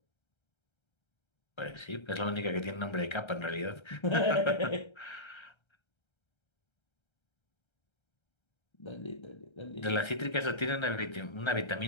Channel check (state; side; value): late; right; 1.3 ms